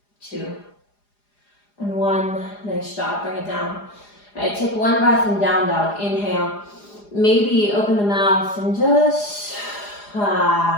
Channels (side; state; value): right; late; 4.9 ms